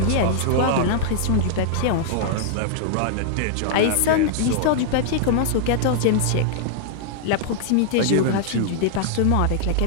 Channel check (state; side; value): different; both; correlation -0.01